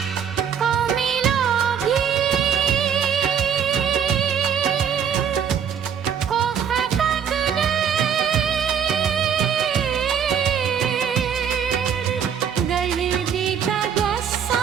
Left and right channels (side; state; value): left; quieter; 7.9 dB